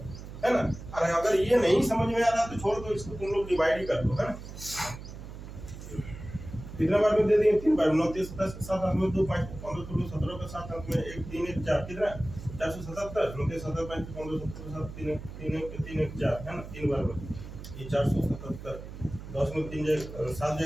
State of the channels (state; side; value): noise; right; hum, 12 dB below the sound